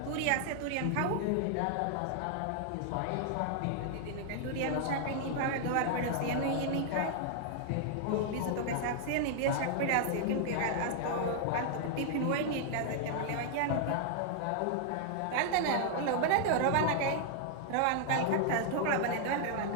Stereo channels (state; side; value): different; both; correlation 0.00